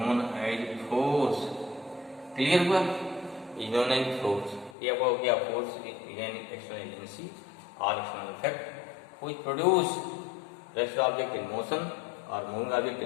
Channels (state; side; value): drops out; right; at 4.8 s